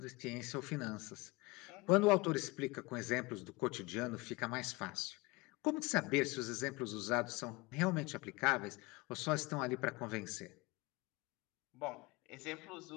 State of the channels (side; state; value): right; quieter; 23.8 dB